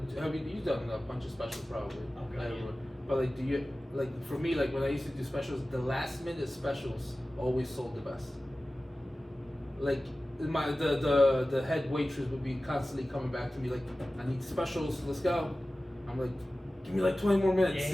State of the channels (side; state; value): both; normal; correlation 0.96